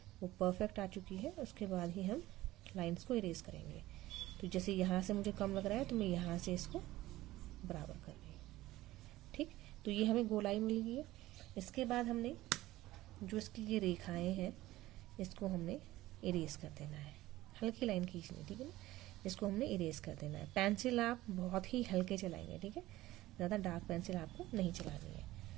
वो परफेक्ट आ चुकी है, उसके बाद ही हम लाइंस को इरेज करेंगे। तो जैसे यहाँ से मुझे कम लग रहा है तो मैं यहाँ से इसको बराबर कर रही हूँ। ठीक, तो ये हमें गोलाई मिल गई है। इसके बाद हमने जो इसकी ये रेखाएं हैं, इसको हमने इरेज कर देना है, हल्की लाइन खींचनी। ठीक है ना, इसको हमने इरेज कर देना है। पेंसिल आप बहुत ही हल्के चलाएंगे। ठीक है, ज़्यादा डार्क पेंसिल आपको नहीं चलानी है।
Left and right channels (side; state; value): left; quieter; 16.8 dB